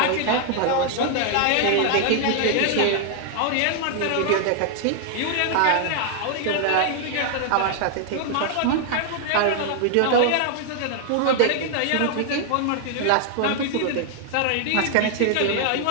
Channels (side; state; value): both; different; correlation 0.00